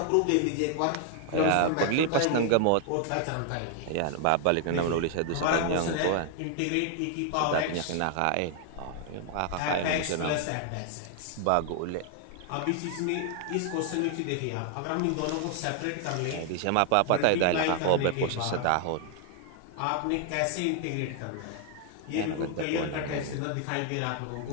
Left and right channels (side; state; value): both; different; correlation 0.00